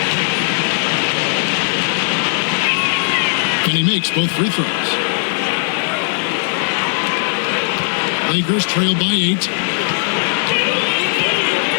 And he makes both free throws. Lakers trail by 8.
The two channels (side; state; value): right; silent; 65 dB below the other